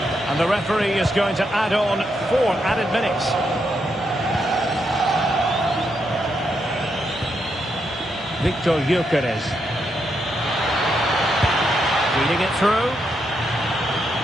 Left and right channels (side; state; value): both; normal; correlation 0.80